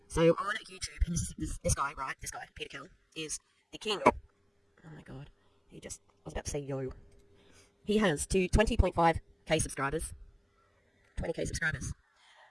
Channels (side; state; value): both; identical; correlation 1.00